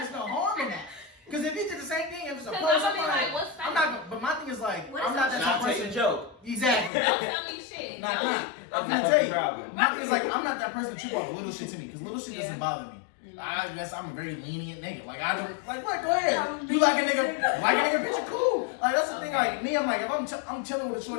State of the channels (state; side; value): drops out; right; at 6.9 s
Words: no harm in that. Because if he did the same thing, if it's a Cause post, I'm gonna be like, what's I'm that? not. But my thing is like, What I'm is not that? that type Not of take a person. joke. Exactly. Don't tell me shit. Nah, Don't. nah. That's I'm the gonna tell you. problem. My thing is like, I'm not that person that you want little shit to me. Because little shit Yeah. doesn't bother me. I guess I'm a very lenient nigga. Like I don't like what? Go ahead. You like a nigga picture? Cool. Like that's the thing. Like me, I'm like if I'm chilling with a